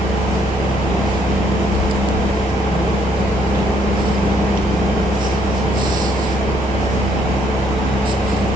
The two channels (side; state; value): both; normal; correlation 0.69